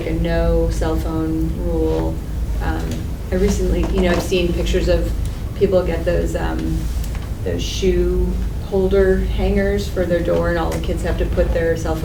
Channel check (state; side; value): identical; both; correlation 1.00